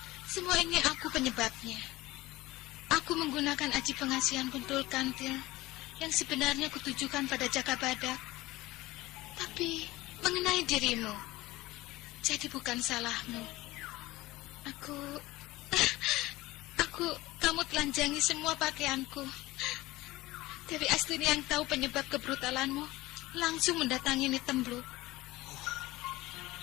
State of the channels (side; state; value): right; quieter; 18.9 dB